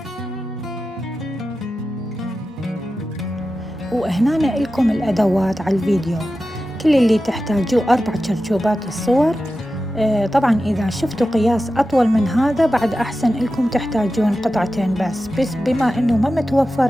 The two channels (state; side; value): normal; both; correlation 0.93